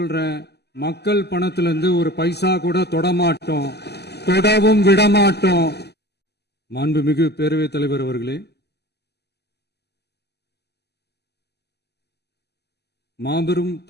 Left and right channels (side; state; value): right; late; 0.48 ms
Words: மக்கள் பணத்திலிருந்து ஒரு பைசா கூட தொடமாட்டோம், தொடவும் விடமாட்டோம். மாண்புமிகு பேரவைத் தலைவர் அவர்களே, மாபெரும்